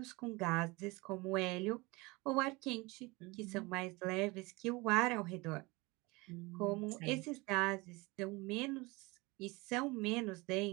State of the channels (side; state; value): left; quieter; 24.3 dB